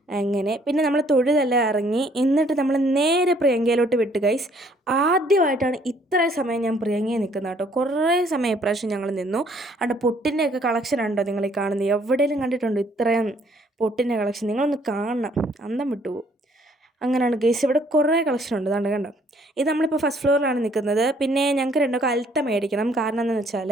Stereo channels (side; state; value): both; normal; correlation 0.63